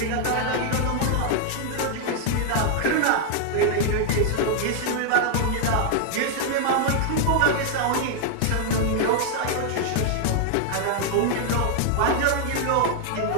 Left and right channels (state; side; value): different; both; correlation 0.00